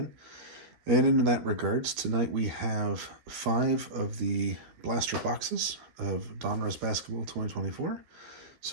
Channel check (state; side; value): late; left; 13 ms